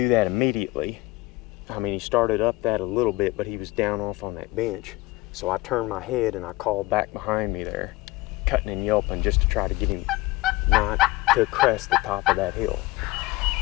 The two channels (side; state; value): right; quieter; 20.3 dB